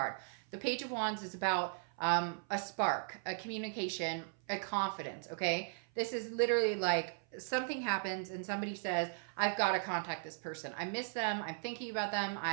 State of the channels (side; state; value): left; silent; 53 dB below the other